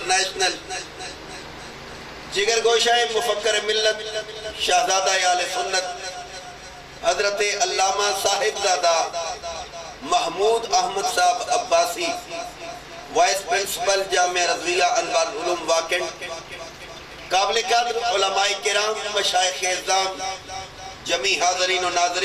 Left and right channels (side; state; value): both; identical; correlation 1.00